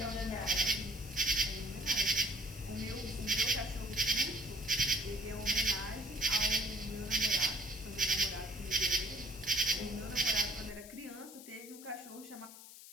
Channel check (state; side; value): noise; left; hiss, 16 dB below the sound